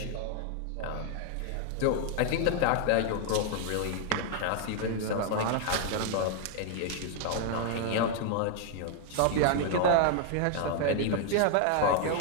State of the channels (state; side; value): different; both; correlation 0.00